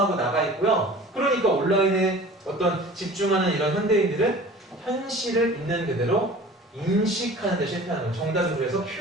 나가 있고요. 그러니까 온라인에 어떤 집중하는 이런 현대인들은 현실을 있는 그대로 인식하는 데 실패하는 거예요. 정답은 그래서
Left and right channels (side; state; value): both; normal; correlation 0.43